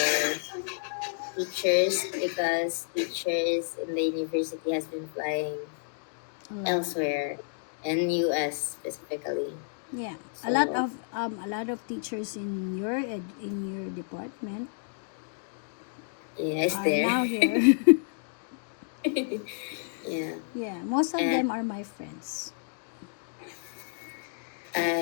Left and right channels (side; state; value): right; silent; digital silence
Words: teachers because teachers in the university has been flying A lot. elsewhere in US specifically. Yeah. So A lot of teachers in your department yeah, it's are there. now here. Yeah. Yeah, most of And them are my friends.